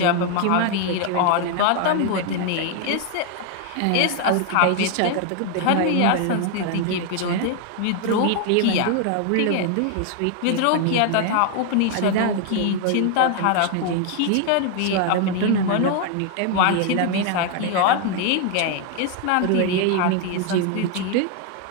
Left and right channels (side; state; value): both; different; correlation 0.00